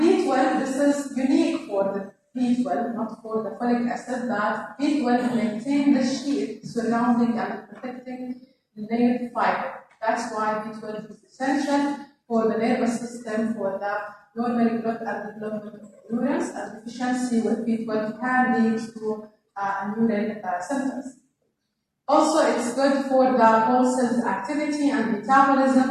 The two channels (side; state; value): both; identical; correlation 1.00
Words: B12, this is unique for the B12, not for the folic acid, that B12 maintains the sheath surrounding and protecting the nerve fiber. That's why B12 is essential for the nervous system, for the normal growth and development of neurons, and deficiency with B12 can lead to neural symptoms. Also, it's good for the whole cell's activity and